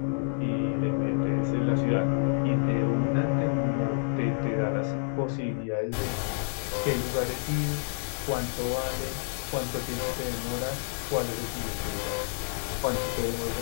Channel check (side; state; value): right; silent; digital silence